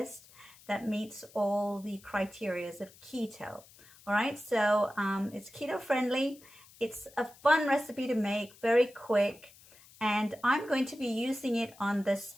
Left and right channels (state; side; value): noise; left; hiss, 24 dB below the sound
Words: that meets all the criteria of keto. All right, so it's keto friendly. It's a fun recipe to make, very quick, and I'm going to be using it on the